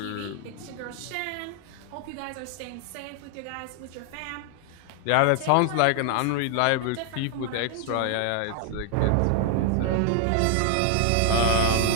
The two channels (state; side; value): different; both; correlation 0.00